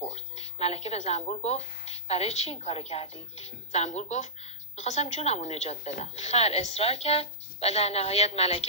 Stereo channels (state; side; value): normal; both; correlation -0.15